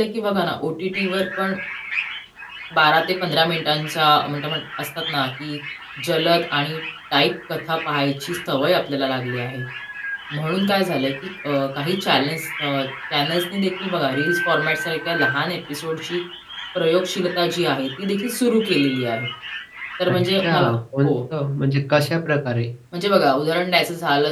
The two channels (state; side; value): identical; both; correlation 1.00